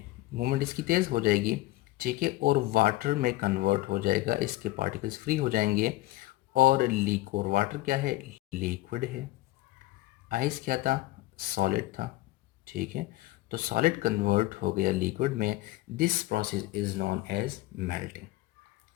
मूवमेंट इसकी तेज़ हो जाएगी। ठीक है, और वाटर में कन्वर्ट हो जाएगा, इसके पार्टिकल्स फ्री हो जाएंगे। और और वाटर क्या है? लिक्विड है। आइस क्या था? सॉलिड था। ठीक है, तो सॉलिड कन्वर्ट हो गया लिक्विड में। This process is known as melting.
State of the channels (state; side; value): quieter; right; 18.0 dB